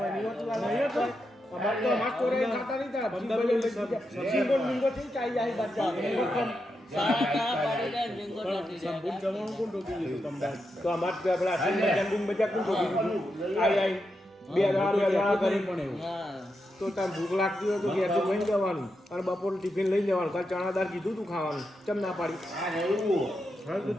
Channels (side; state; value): both; normal; correlation 0.85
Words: નહીં હોતું નહીં તો અમાર તો અમાર સ્ટોરે ખાતા નહીં તા 15 મિનિટ થી ચાઈ જાય બચ્ચા સંપૂર્ણ જમવાનું કોણ ટોકી દીધું તમને તો અમાર પેલા જંગુમ બજા કોણ ટોકી દીધું આઈ બે દાડા કરી પણ એવું તો તાર ભૂખ લાગતી હોય તો ઘેરથી લઈને જવાનું અને બપોર ટિફિન લઈ જવાનું કાલ ચણાદાર કીધું તું ખાવાનું ચમ ના પાડી હા